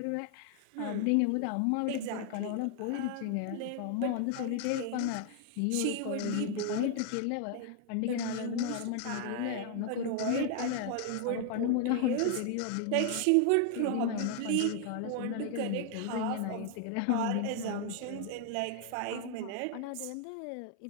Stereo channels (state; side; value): different; both; correlation 0.00